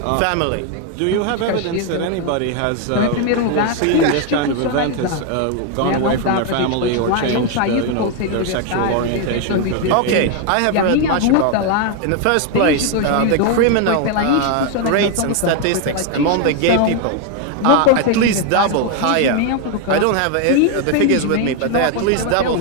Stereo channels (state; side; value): different; both; correlation 0.01